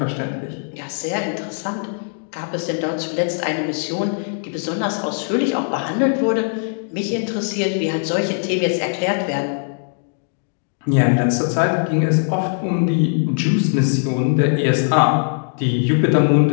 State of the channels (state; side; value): silent; right; digital silence